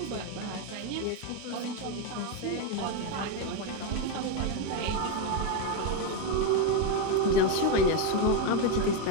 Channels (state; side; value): different; both; correlation 0.02